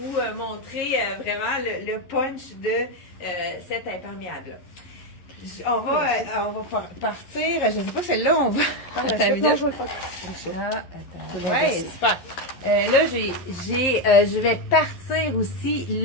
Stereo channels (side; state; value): right; late; 11 ms